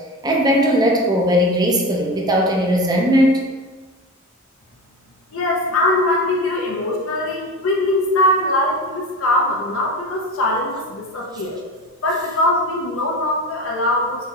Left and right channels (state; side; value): normal; both; correlation 0.27